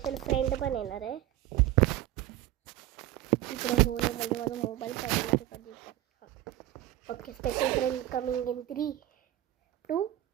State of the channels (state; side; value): quieter; left; 14.1 dB